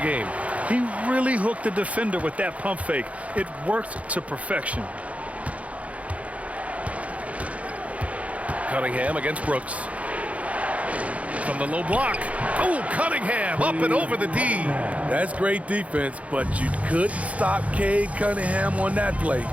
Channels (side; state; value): left; late; 0.066 ms